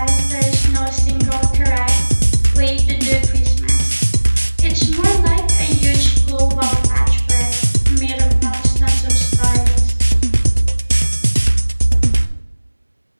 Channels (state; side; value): inverted; both; correlation -1.00